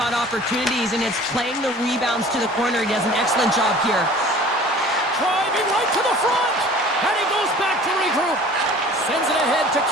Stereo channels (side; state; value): both; normal; correlation 0.46